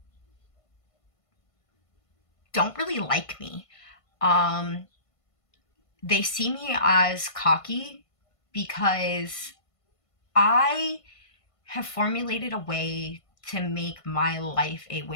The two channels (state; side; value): late; right; 1.5 ms